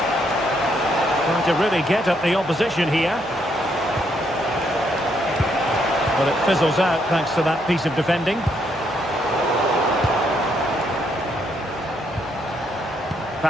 Trying to really get at the opposition here. But it fizzles out thanks to that piece of defending.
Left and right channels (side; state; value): right; noise; hum, 25 dB below the sound